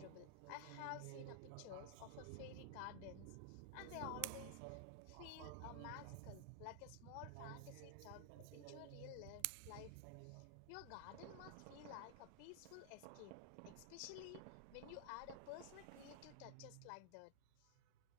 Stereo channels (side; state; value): both; different; correlation 0.00